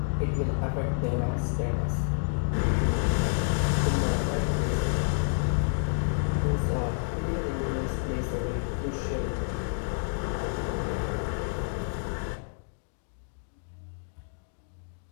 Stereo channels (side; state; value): right; silent; digital silence